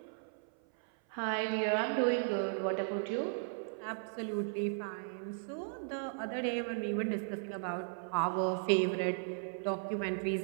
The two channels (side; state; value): left; silent; 54 dB below the other